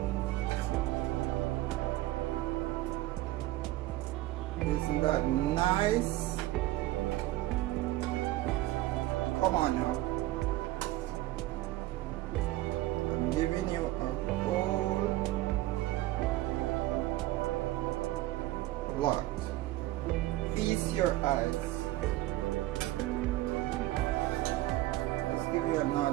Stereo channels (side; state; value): left; quieter; 16.6 dB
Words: Isn't that nice? Come on now. Giving you a whole lot. Feast your eyes. Let's give you